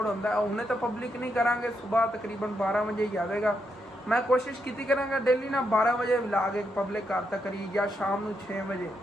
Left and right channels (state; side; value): normal; both; correlation 0.81